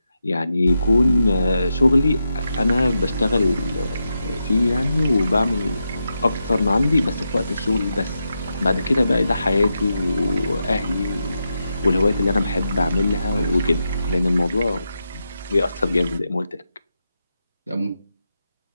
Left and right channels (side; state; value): both; inverted; correlation -0.87